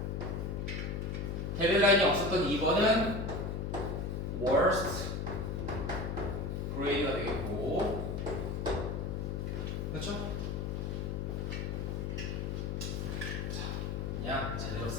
데드라인이 없었던 2번은 worst grade가 되겠고 그렇죠? 자, 그냥 제대로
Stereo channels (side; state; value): left; noise; hum, 2 dB below the sound